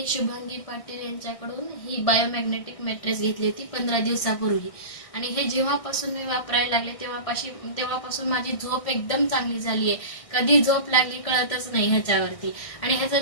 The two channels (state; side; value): late; right; 1.6 ms